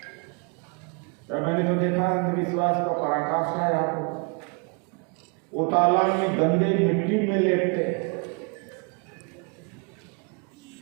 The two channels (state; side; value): quieter; left; 34.9 dB